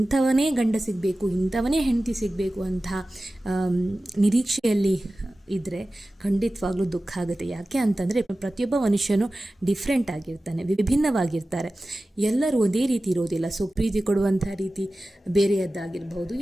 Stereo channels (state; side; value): normal; both; correlation 0.95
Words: ಗಂಡ ಸಿಗಬೇಕು, ಇಂಥವನೇ ಹೆಂಡತಿ ಸಿಗಬೇಕು ಅಂತ ನಿರೀಕ್ಷೆಯಲ್ಲಿ ಇದ್ದರೆ ಖಂಡಿತವಾಗ್ಲೂ ದುಃಖ ಆಗುತ್ತೆ. ಯಾಕೆ ಅಂತಂದರೆ ಪ್ರತಿಯೊಬ್ಬ ಮನುಷ್ಯನು ಡಿಫ್ರೆಂಟ್ ಆಗಿರ್ತಾನೆ, ವಿಭಿನ್ನವಾಗಿರ್ತಾರೆ. ಎಲ್ಲರೂ ಒಂದೇ ರೀತಿ ಇರೋದಿಲ್ಲ. ಸೊ ಪ್ರೀತಿ ಕೊಡುವಂಥ ರೀತಿ ಬೇರೆಯದ್ದಾಗಿರ್ಬೋದು,